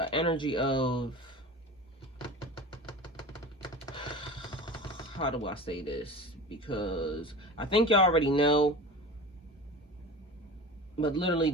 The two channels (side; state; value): both; normal; correlation 0.34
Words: energy of, how do I say this? Because I think y'all already know, but literally